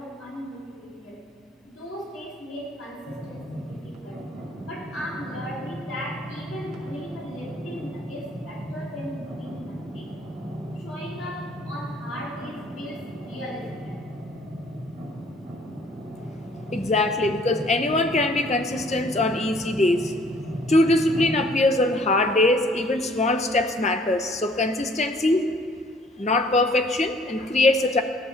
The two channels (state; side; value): normal; both; correlation 0.58